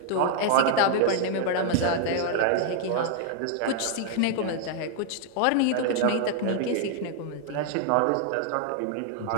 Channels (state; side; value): different; both; correlation 0.00